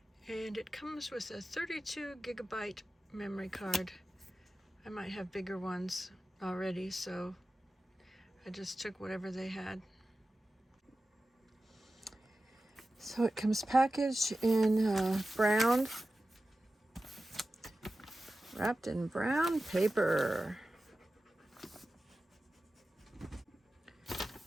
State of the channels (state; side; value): normal; both; correlation 0.94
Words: And it comes with a 32 gigabyte memory card. I might have bigger ones already, so I just took whatever they had. So it comes packaged in brown, wrapped in brown paper.